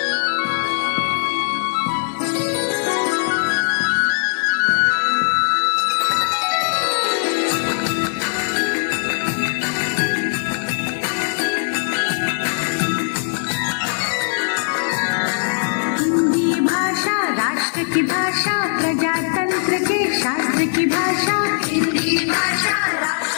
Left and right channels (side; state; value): right; silent; 66 dB below the other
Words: की भाषा प्रजातंत्र के शास्त्र की भाषा, हिंदी भाषा